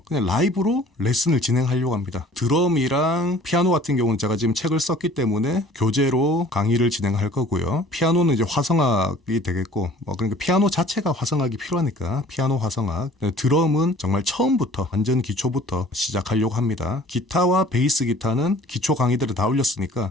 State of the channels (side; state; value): both; normal; correlation 0.51